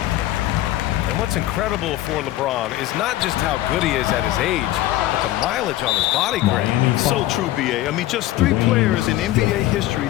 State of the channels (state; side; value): quieter; right; 15.1 dB